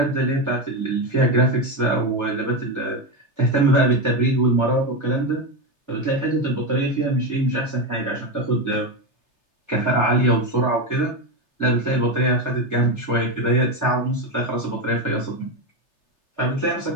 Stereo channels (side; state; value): right; late; 3.3 ms